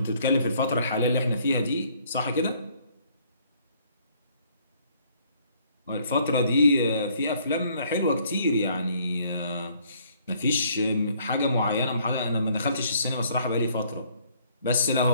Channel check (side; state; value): both; inverted; correlation -0.63